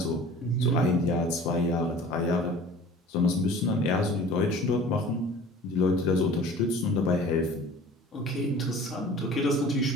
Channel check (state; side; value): normal; both; correlation 0.44